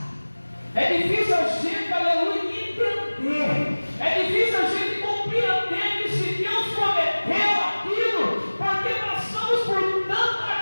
é difícil a gente, aleluia, entender, é difícil a gente compreender que se Deus prometeu aquilo, porque passamos por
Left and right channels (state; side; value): inverted; both; correlation -1.00